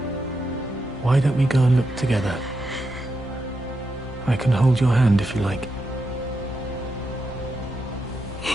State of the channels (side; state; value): both; normal; correlation 0.85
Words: Why don't we go and look together? I can hold your hand if you like.